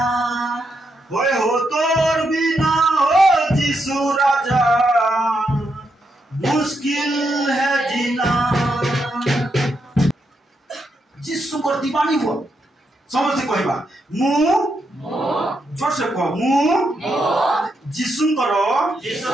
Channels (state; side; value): normal; both; correlation 0.82